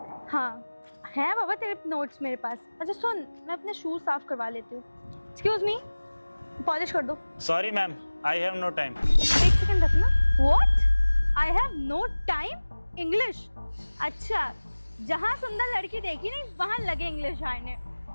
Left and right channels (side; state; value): both; inverted; correlation -1.00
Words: हाँ है बाबा तेरे नोट्स मेरे पास। अच्छा सुन, मैं अपने शूज साफ करवा लेती हूँ। एक्सक्यूज मी, पॉलिश कर दो। Sorry ma'am, I have no time. एक सेकंड रखना। What? I have no time? English? अच्छा, जहाँ सुंदर लड़की देखी नहीं वहाँ लगे इंग्लिश आने।